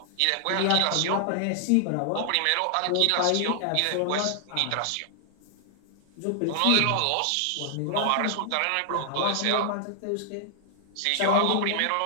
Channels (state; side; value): different; both; correlation 0.00